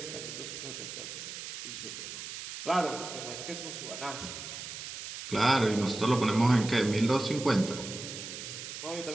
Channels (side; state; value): right; noise; hiss, 9 dB below the sound